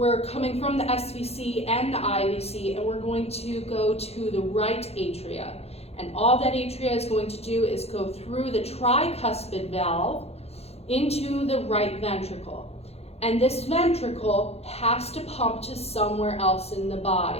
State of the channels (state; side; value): late; right; 0.30 ms